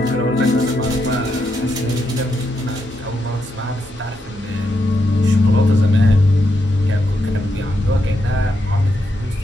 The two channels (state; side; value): normal; both; correlation 0.82